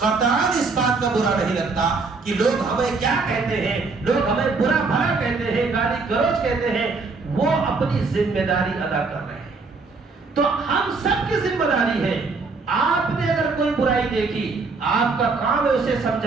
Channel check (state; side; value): quieter; left; 4.2 dB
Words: اس بات کا برا نہیں لگتا کہ لوگ ہمیں کیا کہتے ہیں, لوگ ہمیں برا بھلا کہتے ہیں, گالی گلوچ کہتے ہیں. وہ اپنی ذمہ داری ادا کر رہے ہیں. تو ہم سب کی ذمہ داری ہے. آپ نے اگر کوئی برائی دیکھی, آپ کا کام ہے اسے